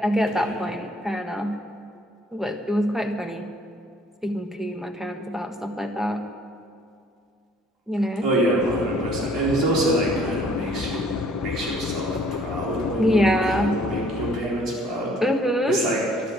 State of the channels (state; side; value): normal; both; correlation 0.58